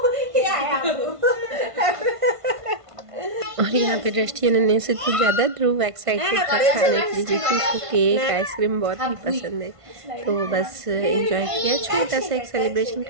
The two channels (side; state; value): left; late; 1.5 ms